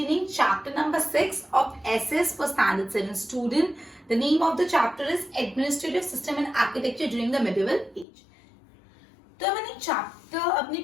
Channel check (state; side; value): drops out; right; at 8.1 s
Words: chapter number 6 of SS for Standard 7 student. The name of the chapter is Administrative System and Architecture during the Medieval Age. तो मैंने chapter अपने